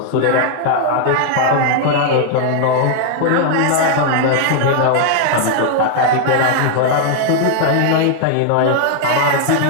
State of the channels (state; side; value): different; both; correlation 0.00